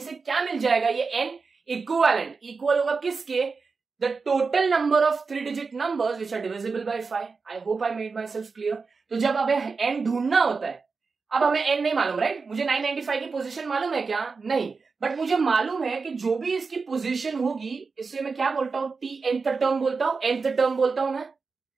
क्या मिल जाएगा? ये एन इक्वल होगा किसके? The total number of 3 digit numbers which are divisible by 5। I hope I made myself clear. तो जब हमें एन ढूंढना होता है, अब हमें एन नहीं मालूम, राइट? मुझे 995 की पोजीशन मालूम है क्या? नहीं। बट मुझे मालूम है कि जो भी इसकी पोजीशन होगी, इससे मैं क्या बोलता हूं? टी nth टर्म बोलता हूं, nth टर्म बोलता हूं मैं।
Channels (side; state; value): left; quieter; 4.6 dB